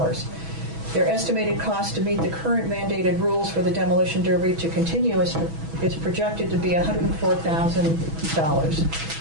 Their estimated cost to meet the current mandated rules for the demolition derby to continue is projected to be $104,000.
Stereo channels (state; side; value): late; left; 6.1 ms